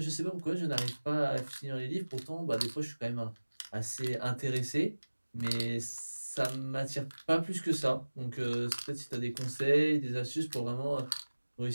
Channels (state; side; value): inverted; both; correlation -1.00